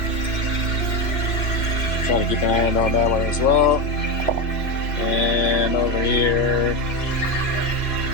Trying to keep an hand on that one as well. And over here,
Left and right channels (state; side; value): late; right; 2.9 ms